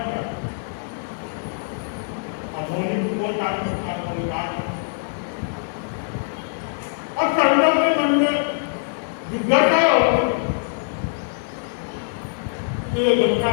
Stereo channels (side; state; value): right; silent; digital silence